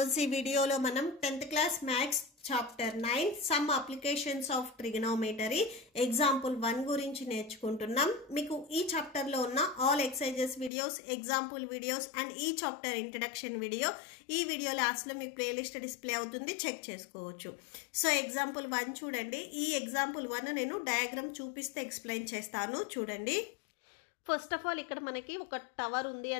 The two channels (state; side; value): drops out; right; at 10.7 s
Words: ఈ వీడియోలో మనం 10th class maths chapter 9 some applications of trigonometry example 1 గురించి నేర్చుకుంటున్నాం. మీకు ఈ చాప్టర్ లో ఉన్న all exercises videos, example videos and ఈ చాప్టర్ introduction video ఈ వీడియో లాస్ట్ లో మీకు ప్లేలిస్ట్ డిస్ప్లే అవుతుంది, చెక్ చేసుకోవచ్చు. సో ఎగ్జాంపుల్ 1 చూడండి. ఈ ఎగ్జాంపుల్ 1 నేను డయాగ్రామ్ చూపిస్తే ఎక్స్ప్లెయిన్ చేస్తాను, చూడండి. ఫస్ట్ ఆఫ్ ఆల్ ఇక్కడ మనకి ఒక టవర్ ఉంది